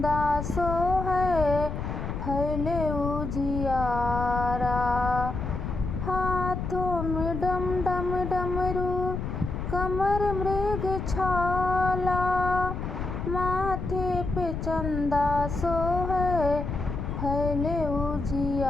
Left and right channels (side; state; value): left; noise; rumble, 4 dB below the sound